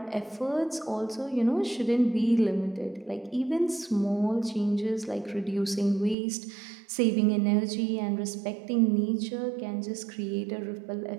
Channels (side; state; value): left; drops out; at 6.2 s